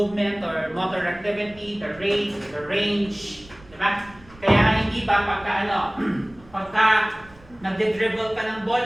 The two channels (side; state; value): right; noise; rumble, 24 dB below the sound